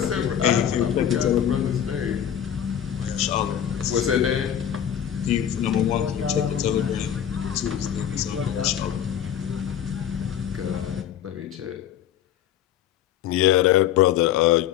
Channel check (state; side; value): quieter; right; 9.9 dB